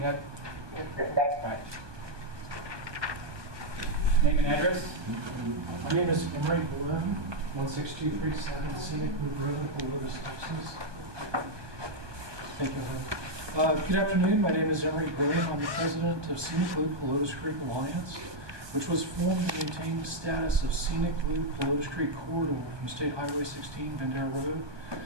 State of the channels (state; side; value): late; left; 1.2 ms